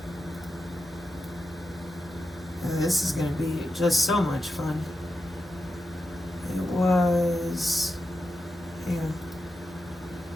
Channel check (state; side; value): normal; both; correlation 0.90